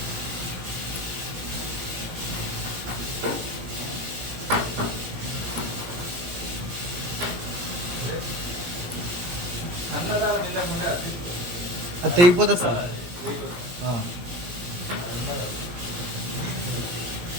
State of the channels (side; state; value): left; late; 17 ms